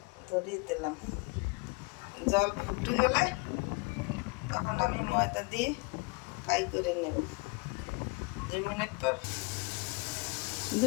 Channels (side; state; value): right; quieter; 27.9 dB